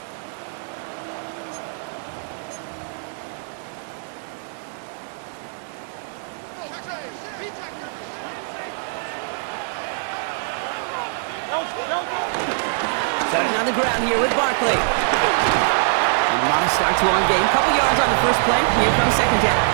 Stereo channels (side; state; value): left; silent; digital silence